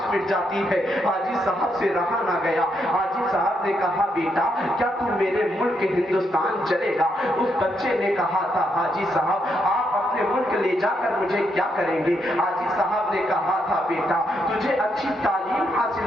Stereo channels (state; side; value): normal; both; correlation 0.78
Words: مٹ جاتی ہے. حاجی صاحب سے رہا نہ گیا. حاجی صاحب نے کہا بیٹا کیا تم میرے ملک ہندوستان چلے گا. اس بچے نے کہا تھا حاجی صاحب آپ اپنے ملک لے جا کر مجھے کیا کریں گے. حاجی صاحب نے کہا تھا بیٹا تجھے اچھی تعلیم